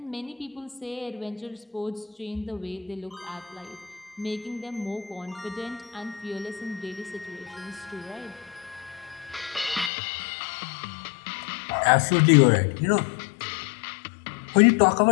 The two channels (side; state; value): right; drops out; at 9.9 s